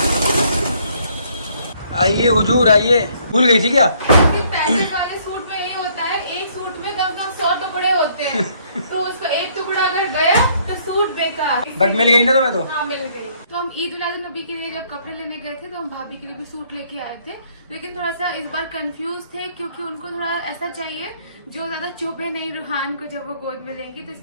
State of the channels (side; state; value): both; inverted; correlation -0.65